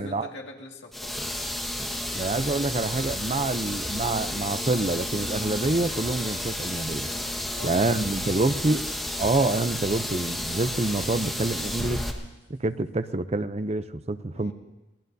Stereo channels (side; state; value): both; normal; correlation 0.62